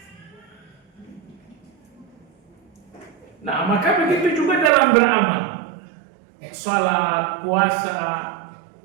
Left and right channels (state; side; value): drops out; left; at 4.7 s